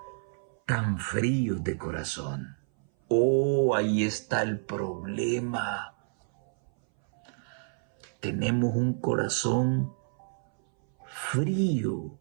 tan fríos de corazón. Oh, ahí está el problema. Tenemos un corazón frío.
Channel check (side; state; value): left; silent; 58 dB below the other